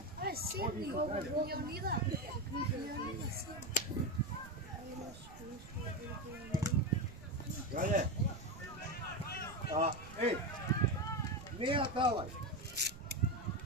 Ај, седни го, Леонида. Леонида, седни. Крале. Еј, не ја давај.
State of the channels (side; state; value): right; noise; rumble, 16 dB below the sound